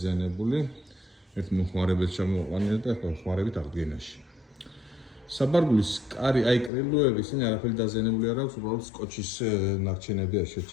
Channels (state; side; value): drops out; right; at 6.7 s